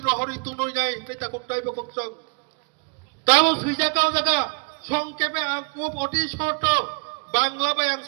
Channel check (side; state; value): left; quieter; 37.3 dB